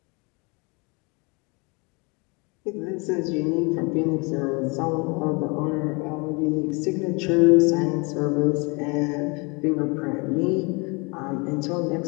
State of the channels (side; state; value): right; quieter; 29.8 dB